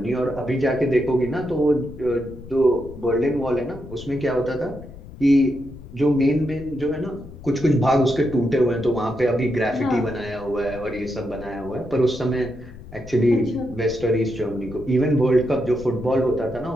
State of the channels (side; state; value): left; noise; rumble, 16 dB below the sound